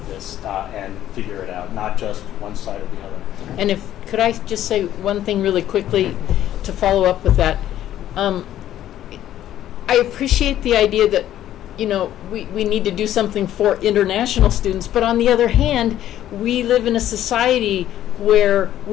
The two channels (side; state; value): right; quieter; 12.2 dB